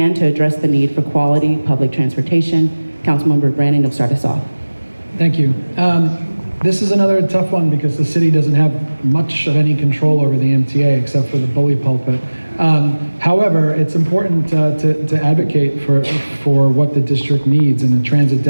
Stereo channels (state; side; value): inverted; both; correlation -1.00